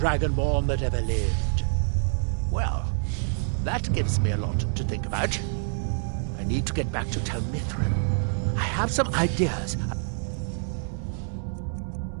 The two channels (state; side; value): silent; left; 60 dB below the other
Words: that ever lived. Well, that gives me a lot to think about. I need to get back to Tel Mithril. I have some ideas.